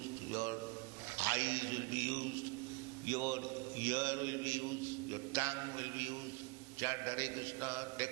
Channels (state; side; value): quieter; left; 28.5 dB